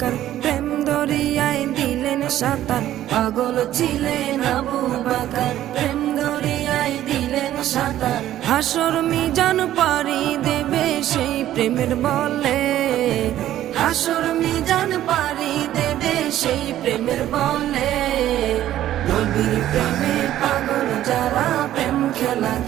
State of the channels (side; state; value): left; quieter; 12.8 dB